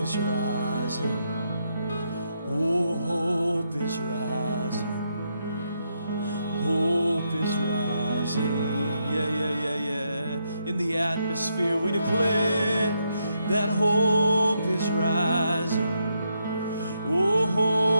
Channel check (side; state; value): both; inverted; correlation -0.80